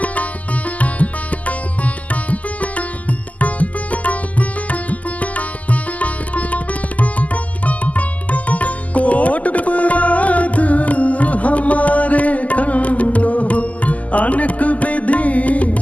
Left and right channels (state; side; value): late; right; 0.074 ms